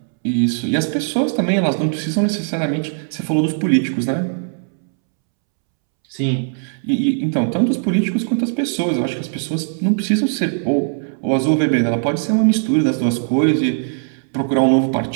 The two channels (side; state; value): left; silent; 67 dB below the other